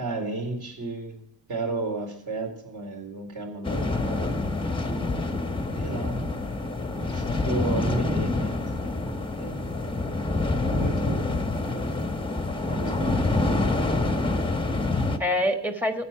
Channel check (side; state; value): both; normal; correlation 0.61